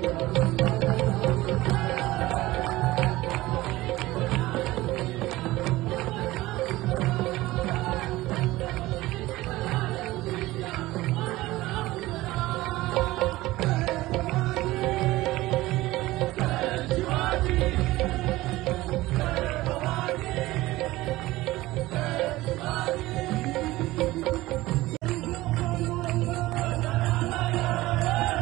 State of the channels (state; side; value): quieter; left; 18.2 dB